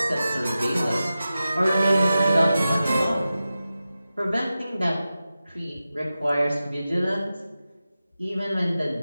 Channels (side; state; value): both; inverted; correlation -0.93